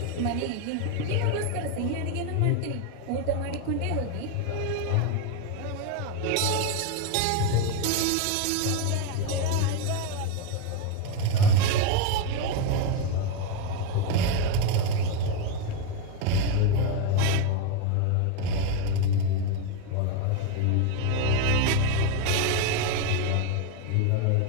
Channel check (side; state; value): both; different; correlation 0.02